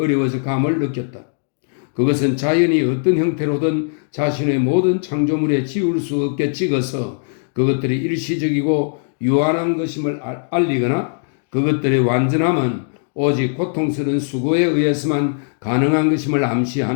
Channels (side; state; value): right; silent; digital silence